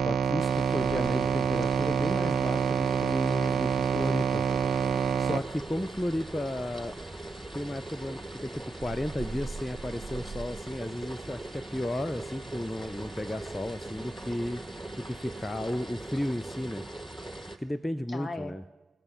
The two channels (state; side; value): quieter; left; 3.2 dB